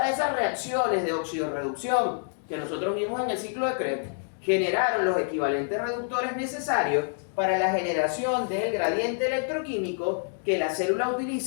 reacciones de oxidorreducción que nosotros vimos en el ciclo de Krebs generaron los equivalentes reductores necesarios para la generación del gradiente electroquímico que la célula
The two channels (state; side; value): silent; right; digital silence